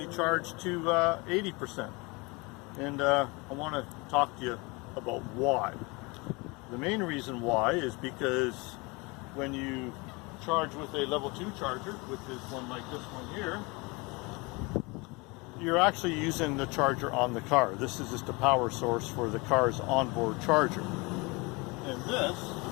charge to 80%. And I want to talk to you about why. The main reason why is because when you charge with a level 2 charger, which is one like this one here, you're actually using the charger on the car. This is just a power source for the car's onboard charger. And this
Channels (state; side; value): quieter; right; 26.7 dB